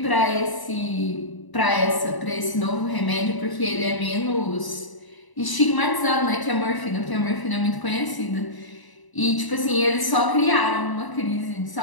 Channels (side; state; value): right; late; 1.0 ms